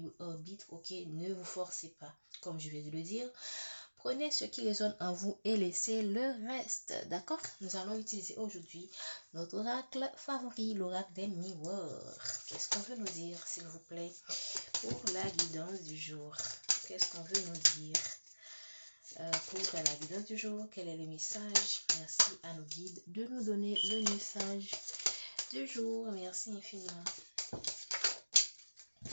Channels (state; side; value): inverted; both; correlation -1.00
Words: arbitre, ok? Ne vous forcez pas, comme je vais de le dire. Prenez ce qui résonne en vous et laissez le reste, d'accord? Nous allons utiliser aujourd'hui notre oracle favori, l'oracle des miroirs. Qu'est-ce qu'on veut nous dire, s'il vous plaît, pour la guidance du jour? Qu'est-ce qu'on veut nous dire? Pour la guidance du jour, quel est le message? Merci à nos guides de nous donner le message du jour. Merci infiniment.